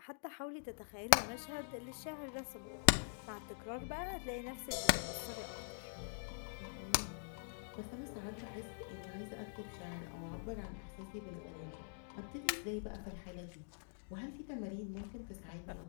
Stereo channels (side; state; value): right; silent; digital silence